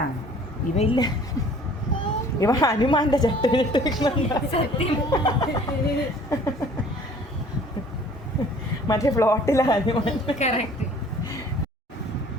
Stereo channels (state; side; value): normal; both; correlation 0.52